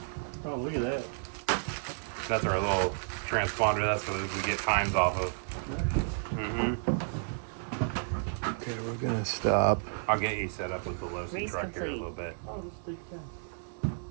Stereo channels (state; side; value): silent; left; 57 dB below the other